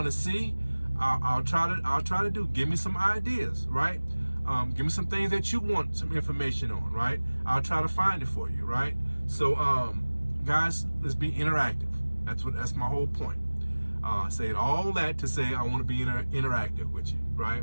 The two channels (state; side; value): inverted; both; correlation -1.00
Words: to see, I'll try to do. Give me some ideas, right? Give me some things that you want some information on, right? I'll try to find it for you, right? So, guys, let's be interactive. That's my whole point. Saying all that to say I want to be interactive with you,